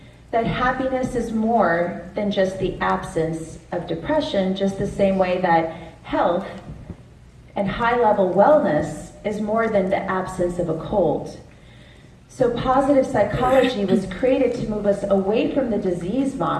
That happiness is more than just the absence of depression, just the same way that health and high-level wellness is more than the absence of a cold. So positive psychology was created to move us away from the disease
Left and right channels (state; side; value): identical; both; correlation 1.00